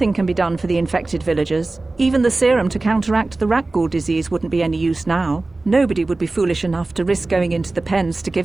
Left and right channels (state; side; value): quieter; left; 3.2 dB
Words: can be done for the infected villagers. Even the serum to counteract the Rukgul disease wouldn't be any use now. Nobody would be foolish enough to risk going into the pens to